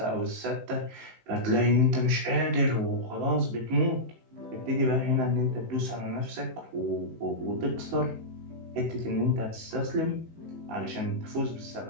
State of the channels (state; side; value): late; left; 18 ms